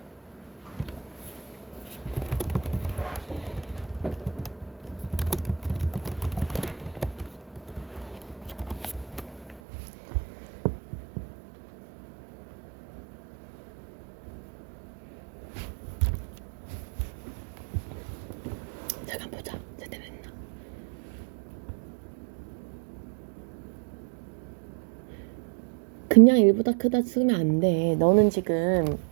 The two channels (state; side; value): drops out; left; at 9.6 s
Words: 잠깐 보자. 제대로 했나? 그냥 1보다 크다 쓰면 안 돼. 너는 지금